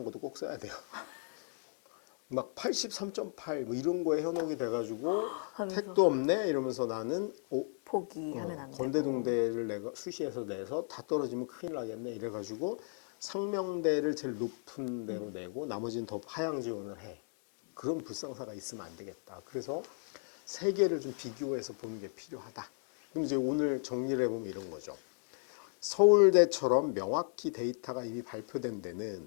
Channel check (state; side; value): silent; right; 54 dB below the other